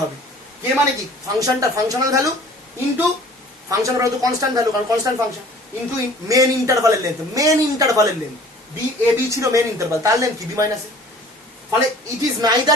হবে। কে মানে কি? ফাংশনটা functional value into functional value তো কনস্ট্যান্ট ভ্যালু, কারণ কনস্ট্যান্ট ফাংশন, ইন্টু মেন ইন্টারভালের লেন্থ, মেন ইন্টারভালের লেন্থ বি এ বি ছিল মেন ইন্টারভাল, তার লেন্থ কি? B minus A. ফলে it is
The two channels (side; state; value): both; normal; correlation 0.50